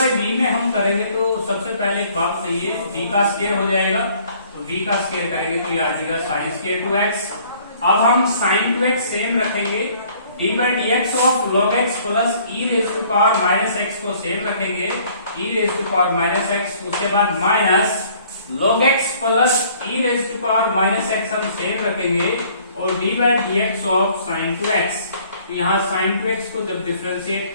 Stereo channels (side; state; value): both; inverted; correlation -0.58